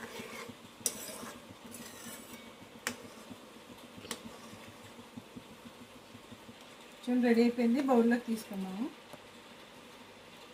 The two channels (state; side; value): identical; both; correlation 1.00